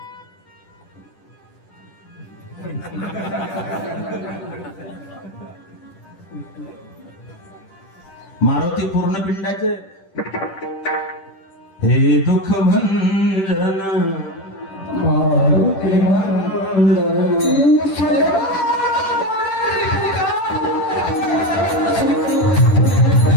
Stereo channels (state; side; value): late; right; 10 ms